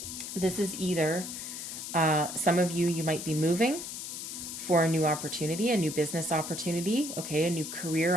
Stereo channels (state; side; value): noise; left; hiss, 7 dB below the sound